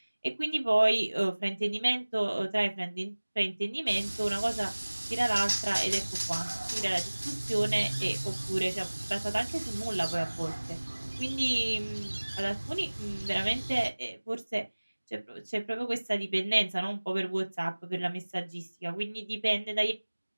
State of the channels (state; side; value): inverted; both; correlation -1.00